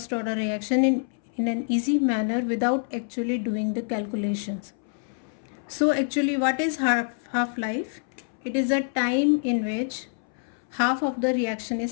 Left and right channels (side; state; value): right; silent; 61 dB below the other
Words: order reaction in an easy manner without actually doing the calculations. So actually what is half-life? It is a time in which half of the reaction